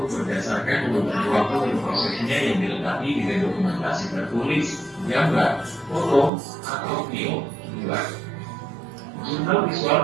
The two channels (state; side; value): drops out; left; at 6.3 s